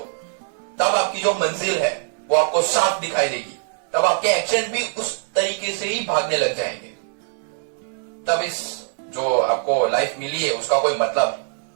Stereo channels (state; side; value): silent; left; 64 dB below the other